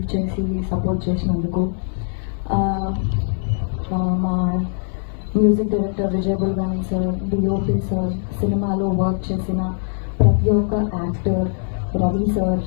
చేసి సపోర్ట్ చేసినందుకు. మా music director Vijay Bulganin sir, DOP sir, సినిమాలో వర్క్ చేసిన ప్రతి ఒక్క యాక్టర్, రవి సార్,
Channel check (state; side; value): silent; right; digital silence